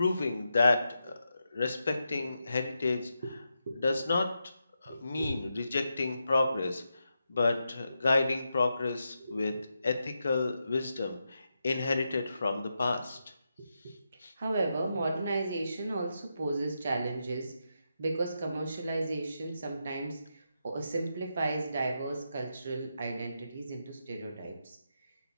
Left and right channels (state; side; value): inverted; both; correlation -0.86